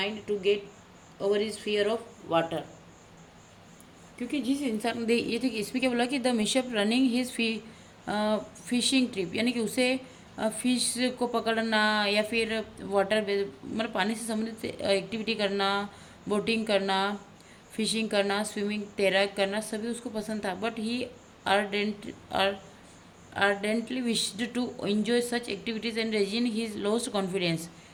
to get over his fear of water. क्योंकि जिस इंसान ने ये देखिए इसमें क्या बोला कि the mishap running his fishing trip, यानी कि उसे फिश को पकड़ना या फिर वाटर मतलब पानी से संबंधित एक्टिविटी करना, बोटिंग करना, फिशिंग करना, स्विमिंग तैराक करना सभी उसको पसंद था। But he ardently wished to enjoy such activities and regain his lost confidence,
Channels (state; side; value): identical; both; correlation 1.00